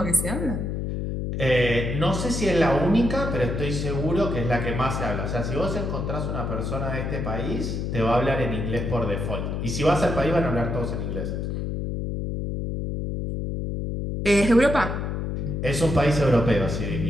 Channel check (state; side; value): noise; left; hum, 2 dB below the sound